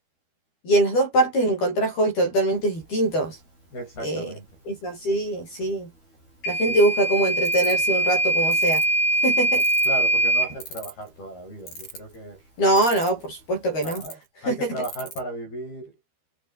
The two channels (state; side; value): late; right; 13 ms